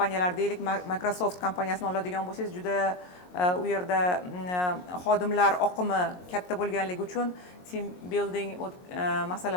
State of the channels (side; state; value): right; late; 22 ms